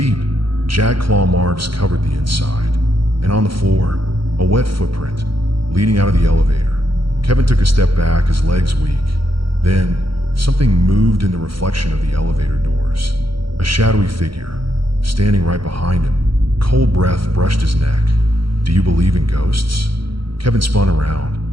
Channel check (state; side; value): late; left; 0.74 ms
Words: jagged claw marks covered the inside. And on the floor, a wet footprint leading out of the elevator. Kevin took a step back, his legs weak. Then, something moved in the reflection of the elevator doors. A shadowy figure, standing right behind him. Cold breath brushed his neck. "Do you believe in ghosts?" Kevin spun around.